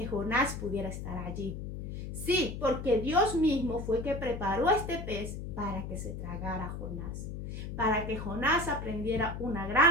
Jonás pudiera estar allí. Sí, porque Dios mismo fue que preparó a este pez para que se tragara a Jonás, para que Jonás aprendiera una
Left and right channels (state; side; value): noise; left; hum, 7 dB below the sound